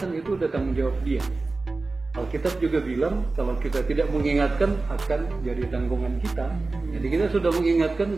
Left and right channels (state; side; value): quieter; left; 3.5 dB